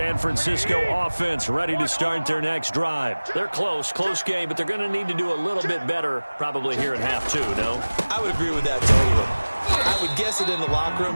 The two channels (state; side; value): inverted; both; correlation -1.00